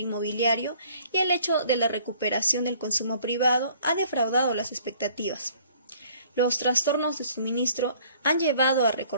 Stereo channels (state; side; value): inverted; both; correlation -0.57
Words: y el hecho de la recuperación del consumo privado ha defraudado las expectativas. Los trastornos de suministro han llevado a